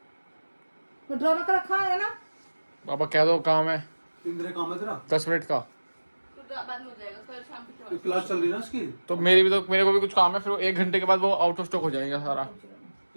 ड्रामा का रखा है ना। पापा कह दो काम है, काम है तेरा 10 मिनट का। बाद में हो जाएगा, कल शाम की क्लास चल रही है ना इसकी। तो मेरे को भी कुछ काम है, फिर 1 घंटे के बाद वो आउट ऑफ स्टॉक हो जाएगा सारा।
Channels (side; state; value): both; inverted; correlation -1.00